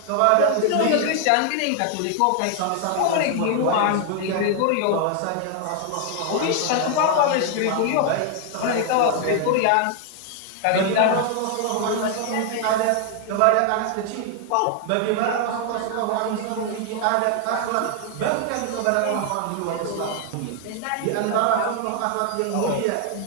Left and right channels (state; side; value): different; both; correlation 0.00